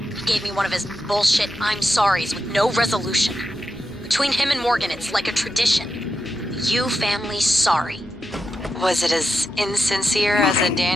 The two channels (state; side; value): normal; both; correlation 0.88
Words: He gave me one of his bullshit I'm sorries with no resolution. Between him and Morgan, it's like a tradition. The Yu family's sorry. Was it as insincere as a